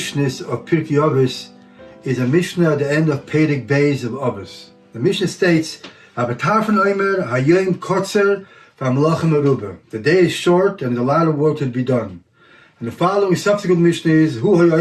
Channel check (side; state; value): both; identical; correlation 1.00